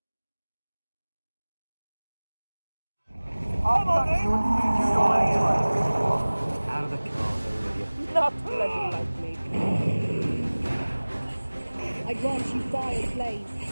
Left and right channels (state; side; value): inverted; both; correlation -1.00